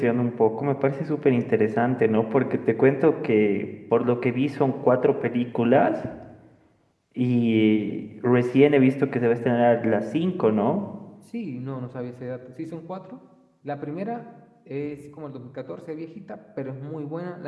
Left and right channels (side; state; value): both; identical; correlation 1.00